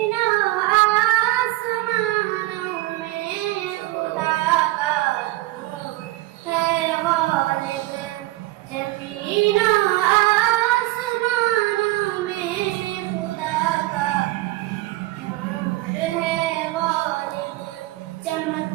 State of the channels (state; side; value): quieter; left; 18.5 dB